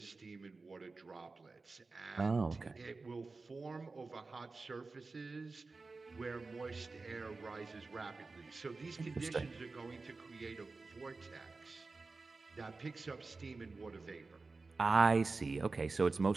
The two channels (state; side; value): quieter; left; 3.8 dB